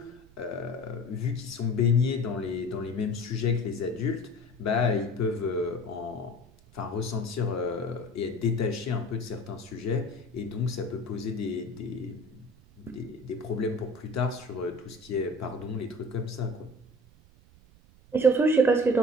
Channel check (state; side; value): noise; right; rumble, 25 dB below the sound